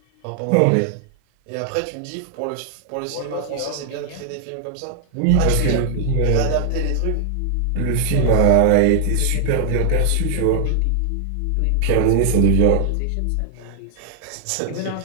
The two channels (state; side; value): different; both; correlation 0.00